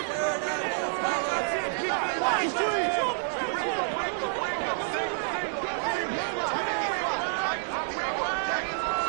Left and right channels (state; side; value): silent; left; digital silence